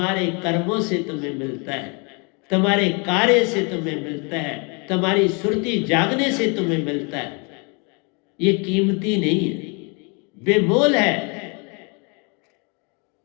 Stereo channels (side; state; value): right; quieter; 32.9 dB